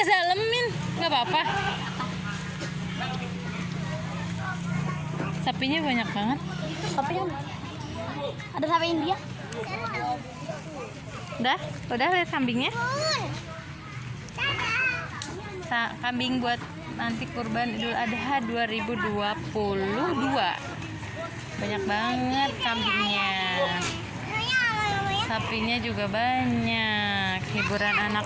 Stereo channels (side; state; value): both; identical; correlation 1.00